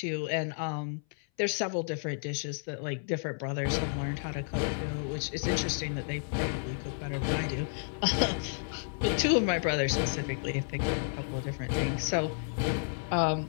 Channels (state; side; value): silent; right; 57 dB below the other